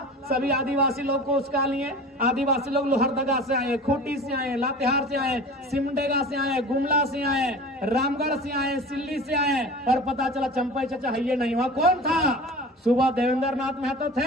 सभी आदिवासी लोग को उसका लिए। आदिवासी लोग लोहरदगा से आए, खूंटी से आए, लातेहार से आए, सिमडेगा से आए, गुमला से आए, रामगढ़ से आए, सिल्ली से आए, और पता चला चंपई चाचा है ये नहीं हुआ। कौन था? सुबह देवेंद्र नाथ महतो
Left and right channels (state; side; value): normal; both; correlation 0.37